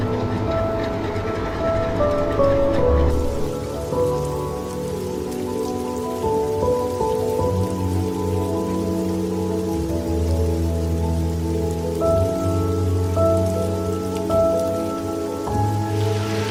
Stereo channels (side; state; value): both; identical; correlation 1.00